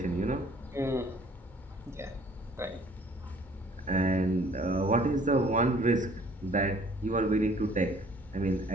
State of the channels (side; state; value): both; normal; correlation 0.56